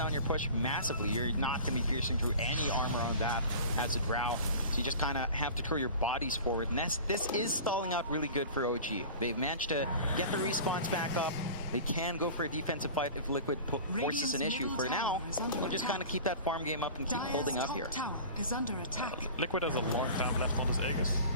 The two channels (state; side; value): inverted; both; correlation -0.38